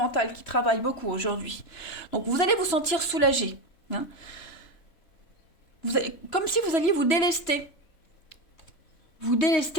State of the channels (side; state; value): right; late; 3.0 ms